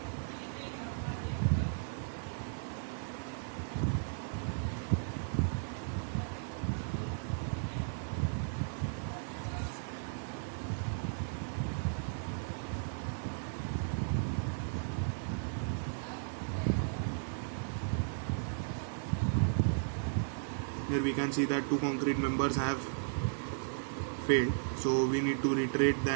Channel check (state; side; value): silent; left; digital silence